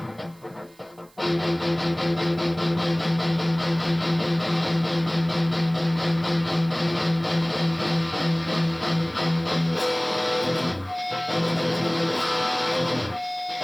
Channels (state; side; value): noise; right; hiss, 29 dB below the sound